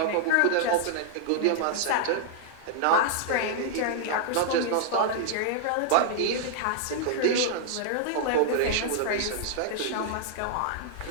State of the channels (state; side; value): different; both; correlation -0.01